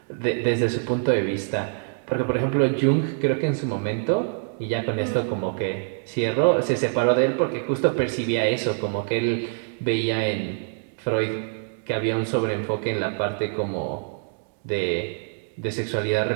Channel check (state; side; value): silent; left; digital silence